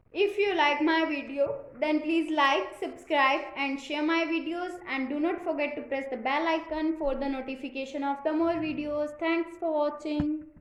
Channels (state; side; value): identical; both; correlation 1.00